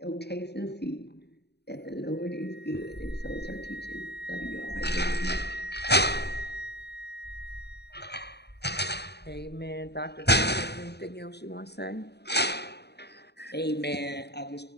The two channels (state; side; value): late; right; 0.48 ms